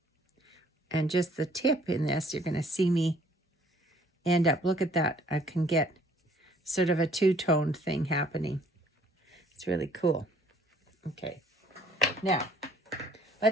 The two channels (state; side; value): normal; both; correlation 0.59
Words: and just the tip in this, you're going to see me end up, look at that. I can get sort of a two-toned thing happening. It's really cool. Okay. Now,